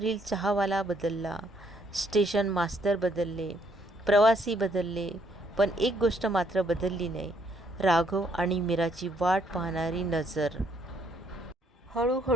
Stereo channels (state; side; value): normal; both; correlation 0.69